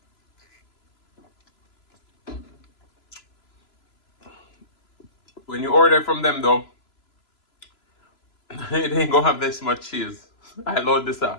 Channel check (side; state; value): right; late; 3.0 ms